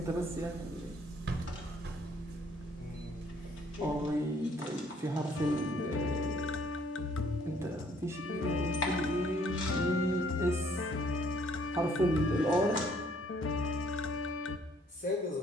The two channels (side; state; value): both; normal; correlation 0.63